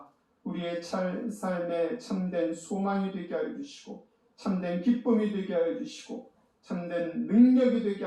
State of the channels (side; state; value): both; identical; correlation 1.00